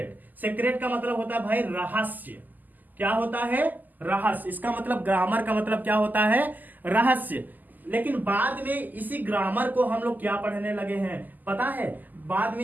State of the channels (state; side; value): late; left; 0.084 ms